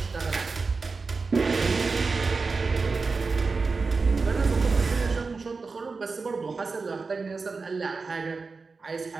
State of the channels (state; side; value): quieter; left; 4.3 dB